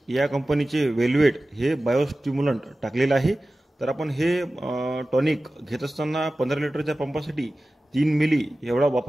या कंपनीचे वेल्वेट हे बायोस्टिम्युलंट टाकलेलं आहे। तर आपण हे टॉनिक घेत असताना 15 लिटरच्या पंपासाठी 3 मिली एवढा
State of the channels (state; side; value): normal; both; correlation 0.96